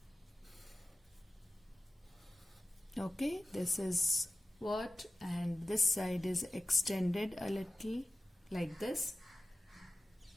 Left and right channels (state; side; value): normal; both; correlation 0.94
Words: Okay, this is what, and this side is extended a little like this.